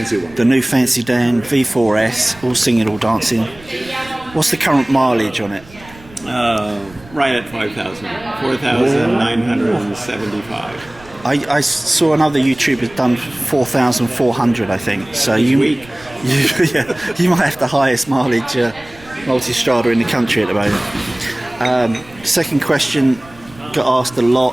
one. The new fancy Dan V4S, all singing, all dancing. What's the current mileage on it? Right at 5,000, 4,975. I saw another YouTuber done 4,400, I think. So you might have the highest mileage Multistrada in the country at the moment. Second question, got asked a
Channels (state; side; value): noise; right; rumble, 22 dB below the sound